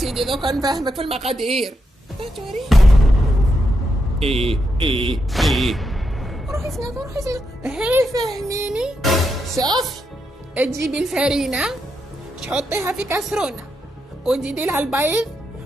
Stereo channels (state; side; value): normal; both; correlation 0.83